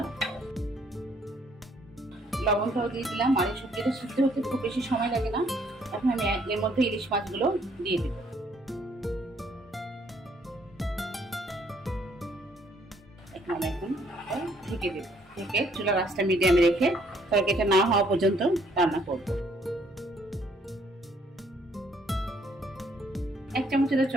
লবণটাও দিয়ে দিলাম। আর এই সবজিটা সিদ্ধ হতে খুব বেশি সময় লাগে না। এখন আমি এর মধ্যে ইলিশ মাছগুলো দিয়ে দিব। এখন ঢেকে দেব, ঢেকে চুলার আঁচটা মিডিয়ামে রেখে তরকারিটা না হওয়া পর্যন্ত রান্না করব। 1 চামচের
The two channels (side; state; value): both; normal; correlation 0.66